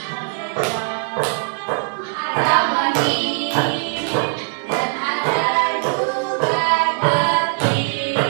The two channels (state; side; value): silent; left; 63 dB below the other